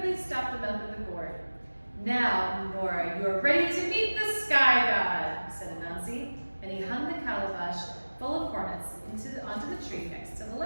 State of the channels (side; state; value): both; inverted; correlation -1.00